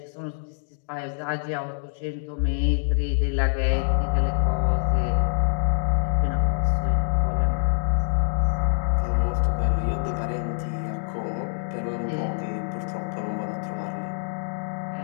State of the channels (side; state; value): right; silent; digital silence